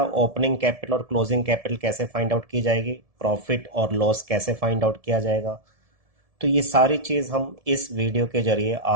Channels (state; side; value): late; left; 1.7 ms